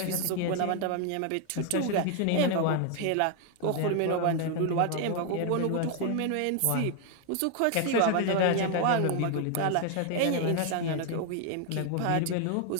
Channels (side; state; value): both; different; correlation 0.00